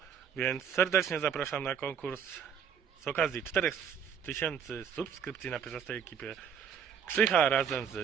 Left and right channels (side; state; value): left; quieter; 7.6 dB